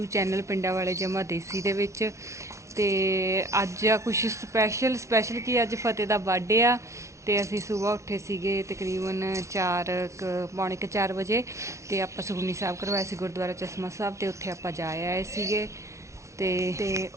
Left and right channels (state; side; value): late; left; 0.14 ms